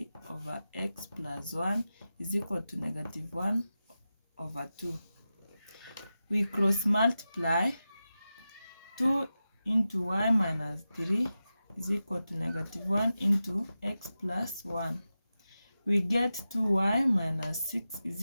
over x plus 1 is equal to -1/2. We cross multiply. 2 into y minus 3 is equal to -1 into x plus 1. We get 2y minus 6 is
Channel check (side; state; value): both; inverted; correlation -0.93